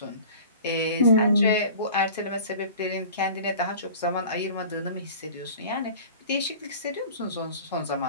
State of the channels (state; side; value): inverted; both; correlation -0.42